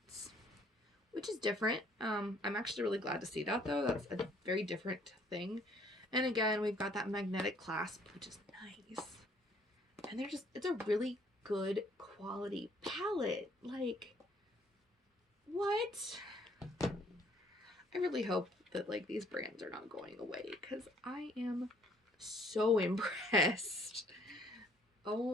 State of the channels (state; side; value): normal; both; correlation 0.62